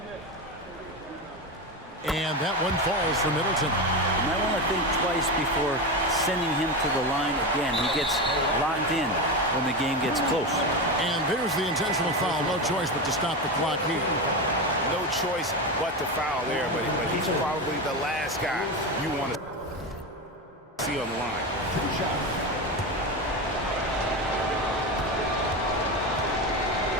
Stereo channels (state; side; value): normal; both; correlation 0.18